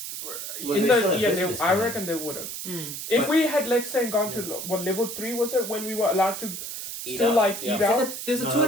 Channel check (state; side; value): noise; right; hiss, 7 dB below the sound